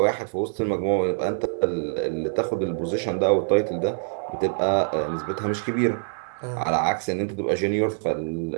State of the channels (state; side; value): silent; left; digital silence